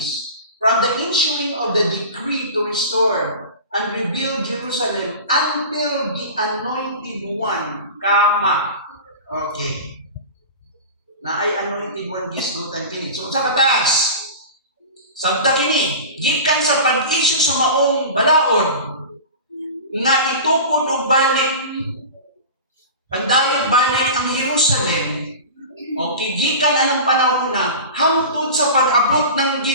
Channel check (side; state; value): both; inverted; correlation -0.33